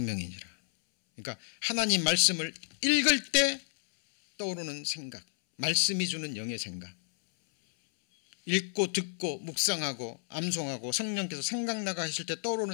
그러니까 하나님 말씀을 읽을 때 떠오르는 생각, 말씀이 주는 영의 생각, 읽고 듣고 묵상하고 암송하고 성령께서 생각나가 하실 때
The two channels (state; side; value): silent; right; 57 dB below the other